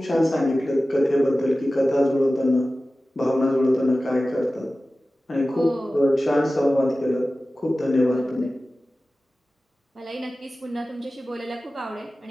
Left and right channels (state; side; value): normal; both; correlation 0.95